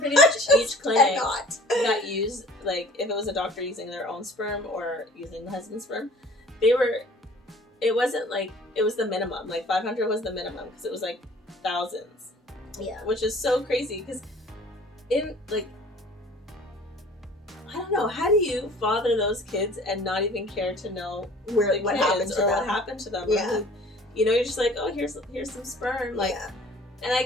pretty much each clinic that used, if it was a doctor using their own sperm or using the husband's sperm, it wasn't it was the minimum. 500 was the minimum, because it was thousands. Yeah. Which is so crazy, because in, I don't know, how do you father those kids and not even care to know what happened to them? What happened to them? Yeah. You know, you're just like, oh, here's some sperm. Like, yeah. and I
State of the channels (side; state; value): both; normal; correlation 0.49